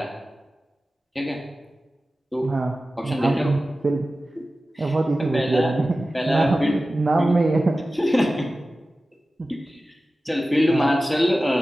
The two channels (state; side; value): normal; both; correlation 0.95